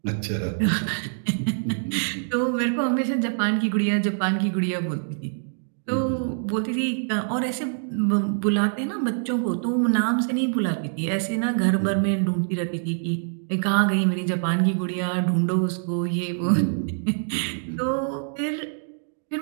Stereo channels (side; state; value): left; silent; digital silence